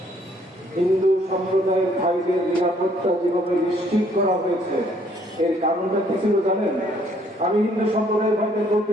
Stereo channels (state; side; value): normal; both; correlation 0.64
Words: হিন্দু সম্প্রদায়ের ভাইদের নিরাপত্তা যেভাবে নিশ্চিত করা হয়েছে, এর কারণটা কি ছিল জানেন? আমি হিন্দু সম্প্রদায়ের ভাইদের বলতে